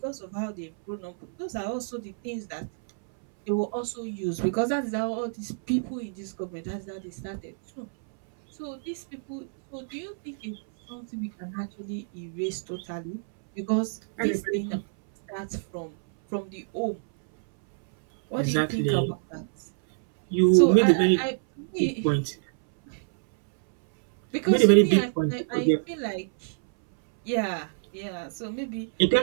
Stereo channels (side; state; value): left; silent; 60 dB below the other